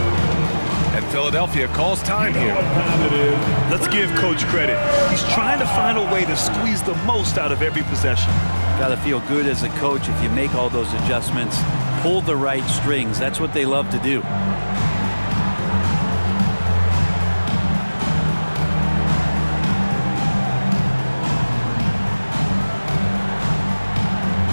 And Philadelphia calls time here. What time it is? Let's give Coach credit. He's trying to find a way to squeeze the most out of every possession. Got to feel good as a coach if you make all those adjustments, pull the right strings. That's what they love to do.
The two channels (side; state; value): both; inverted; correlation -1.00